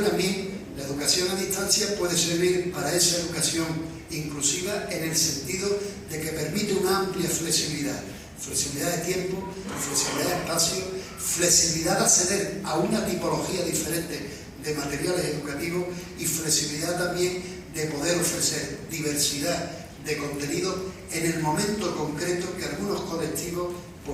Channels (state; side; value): identical; both; correlation 1.00